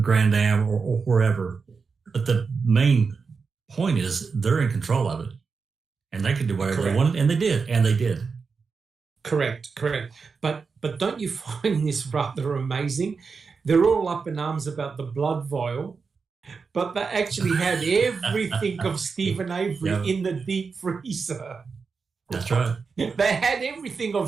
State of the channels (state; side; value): quieter; left; 5.1 dB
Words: Grand Am or wherever. But the main point is they're in control of it, and they can do whatever they wanted, and they did. Correct. But don't you find this rather amazing? They're all up in arms about the blood vial, but they actually had everything of Stephen Avery in the deep freezer. That's right. They had everything